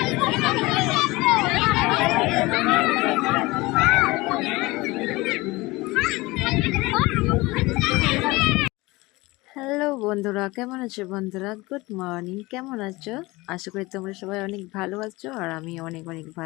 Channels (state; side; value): quieter; right; 21.7 dB